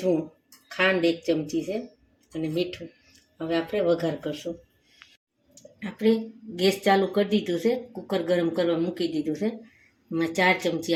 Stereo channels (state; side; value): identical; both; correlation 1.00